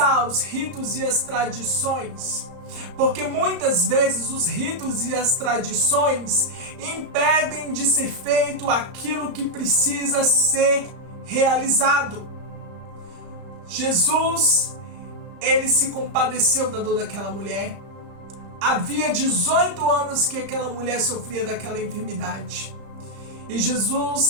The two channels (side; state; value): left; late; 35 ms